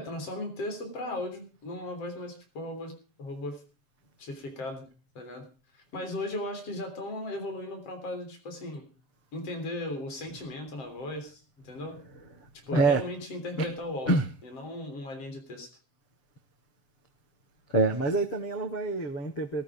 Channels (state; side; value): late; right; 7.5 ms